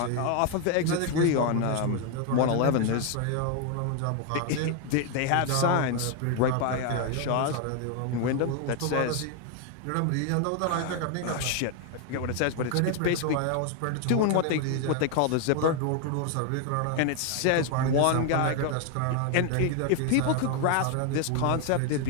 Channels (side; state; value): both; different; correlation 0.01